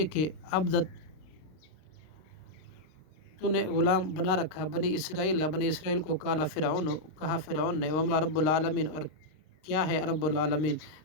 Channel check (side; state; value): right; late; 32 ms